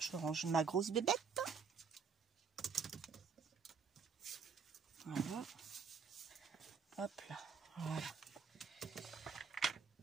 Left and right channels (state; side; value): quieter; left; 6.0 dB